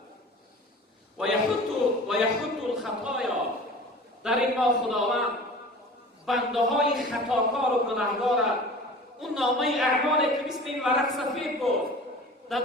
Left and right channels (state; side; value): normal; both; correlation 0.40